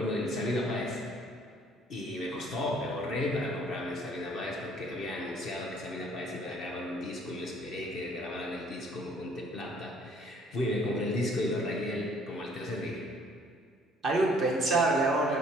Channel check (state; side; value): normal; both; correlation 0.59